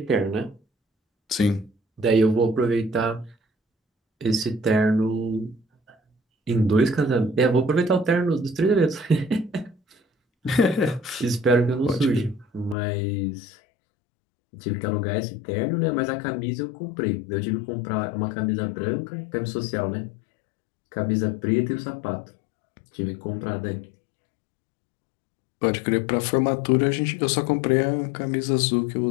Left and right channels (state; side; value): drops out; right; at 12.8 s